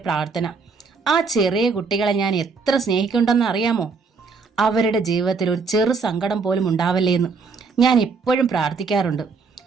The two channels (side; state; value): left; quieter; 4.8 dB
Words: പ്രാർത്ഥന. ആ ചെറിയ കുട്ടികളെ ഞാൻ എത്ര സ്നേഹിക്കുന്നുണ്ടെന്ന് അറിയാമോ? അവരുടെ ജീവിതത്തിൽ ഒരു ചെറു സങ്കടം പോലും ഉണ്ടാവല്ലേ എന്ന് ഞാൻ എപ്പോഴും പ്രാർത്ഥിക്കാറുണ്ട്.